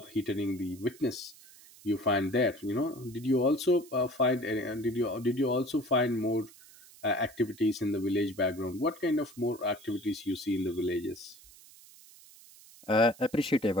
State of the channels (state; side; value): noise; right; hiss, 22 dB below the sound